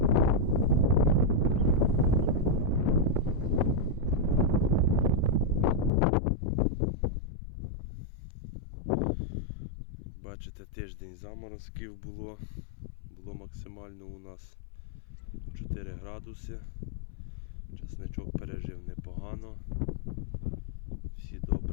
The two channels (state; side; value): drops out; right; at 5.9 s